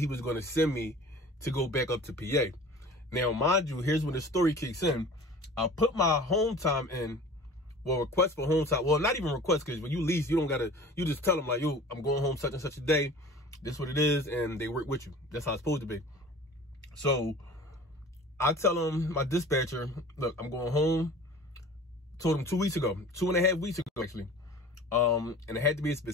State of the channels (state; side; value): normal; both; correlation 0.42